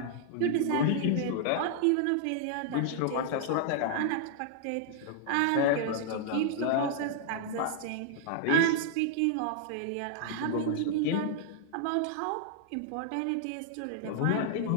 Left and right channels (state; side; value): different; both; correlation -0.01